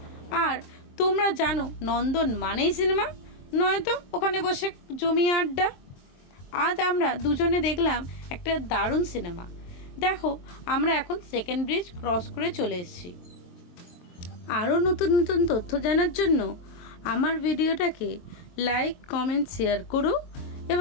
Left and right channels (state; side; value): late; right; 23 ms